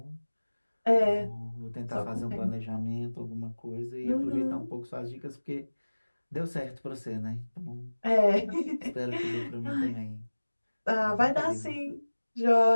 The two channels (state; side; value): inverted; both; correlation -1.00